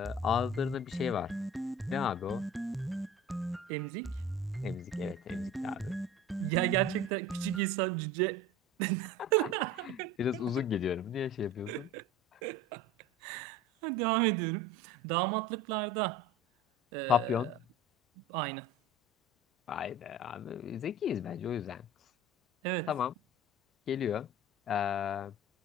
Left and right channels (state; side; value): normal; both; correlation 0.38